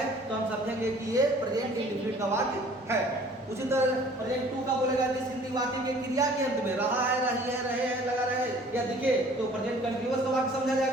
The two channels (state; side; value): normal; both; correlation 0.52